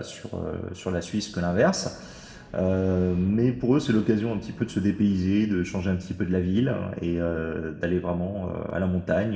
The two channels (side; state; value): both; identical; correlation 1.00